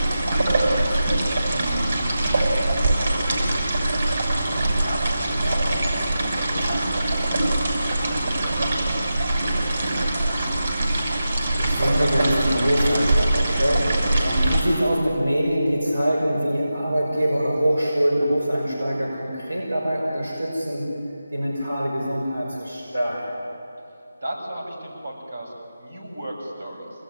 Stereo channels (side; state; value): both; inverted; correlation -0.91